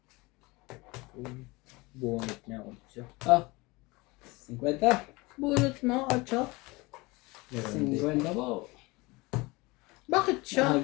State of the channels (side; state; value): right; quieter; 23.8 dB